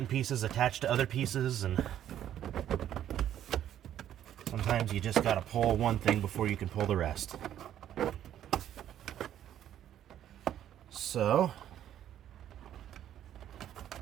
pieces attach to other pieces, and sometimes you just gotta pull one thing before you can pull the rest. So,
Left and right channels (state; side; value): quieter; left; 11.0 dB